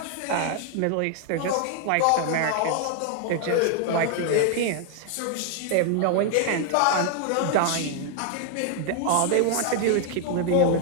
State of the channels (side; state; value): both; different; correlation 0.00